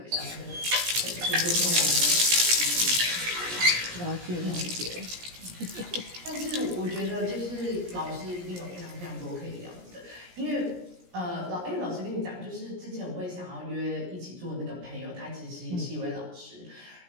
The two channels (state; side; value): late; left; 17 ms